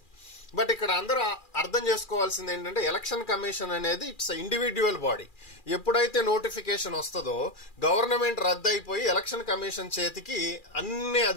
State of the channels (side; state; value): right; late; 2.4 ms